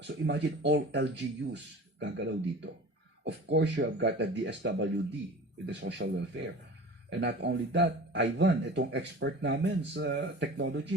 So imagine all LGUs gagalaw dito. Of course, you have got the DSWD with the social welfare. And not only that, Ivan, itong expert namin sa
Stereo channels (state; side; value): normal; both; correlation 0.39